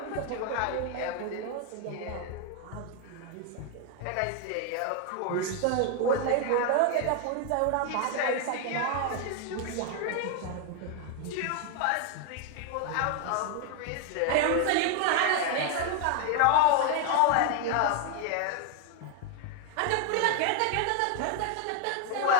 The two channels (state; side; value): different; both; correlation 0.01